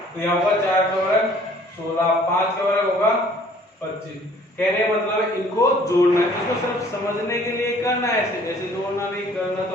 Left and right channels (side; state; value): both; normal; correlation 0.56